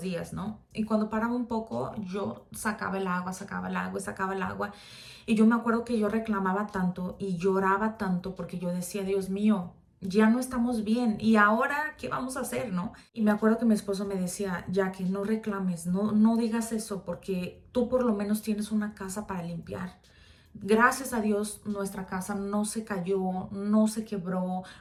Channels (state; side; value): identical; both; correlation 1.00